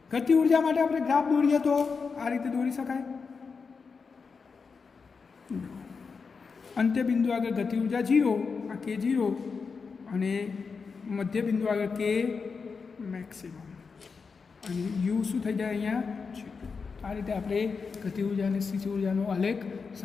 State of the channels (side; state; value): right; quieter; 5.1 dB